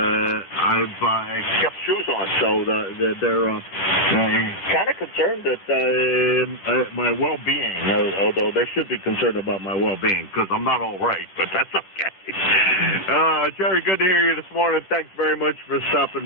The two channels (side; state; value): right; late; 11 ms